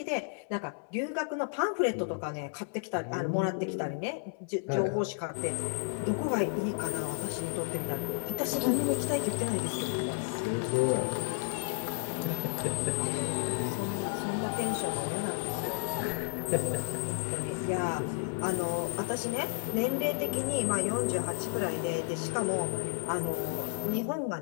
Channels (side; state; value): right; silent; 56 dB below the other